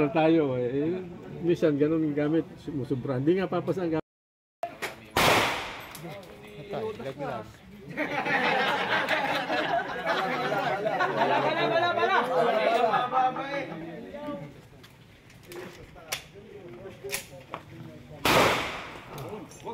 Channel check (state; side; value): identical; both; correlation 1.00